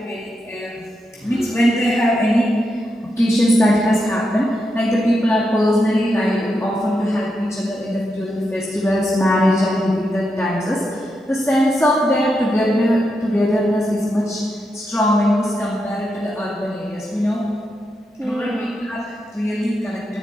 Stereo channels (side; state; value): both; normal; correlation 0.85